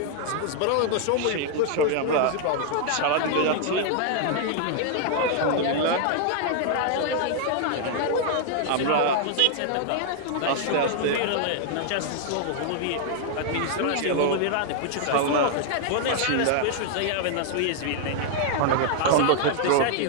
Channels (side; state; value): both; different; correlation 0.00